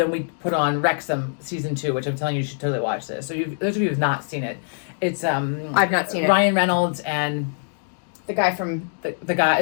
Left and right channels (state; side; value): silent; right; digital silence